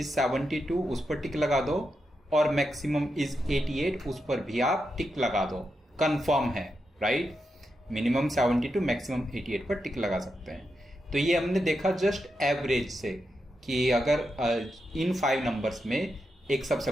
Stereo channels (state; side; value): normal; both; correlation 0.86